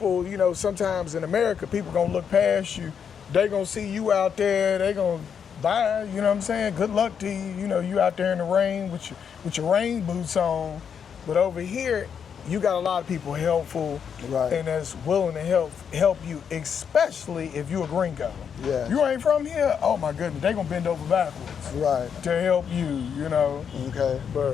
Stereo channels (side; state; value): right; quieter; 7.4 dB